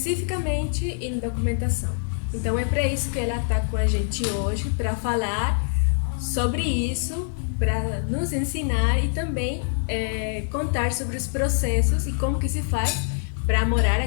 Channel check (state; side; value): silent; right; digital silence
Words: em documentação. Então é para isso que ela está com a gente hoje, para falar sobre isso, para nos ensinar e também contar sobre os processos e como que se faz para morar